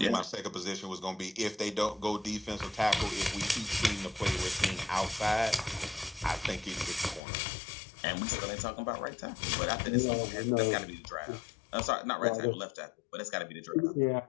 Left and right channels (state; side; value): drops out; right; at 7.2 s